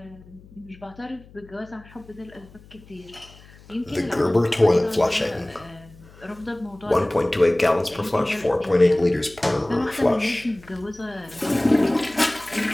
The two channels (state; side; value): noise; left; hum, 23 dB below the sound